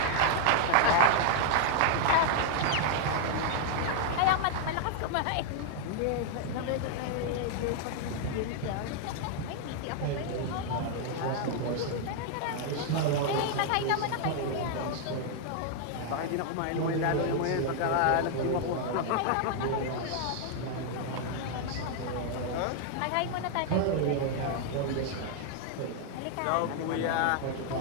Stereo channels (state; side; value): different; both; correlation 0.00